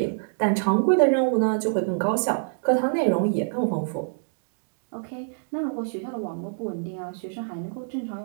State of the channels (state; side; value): silent; left; digital silence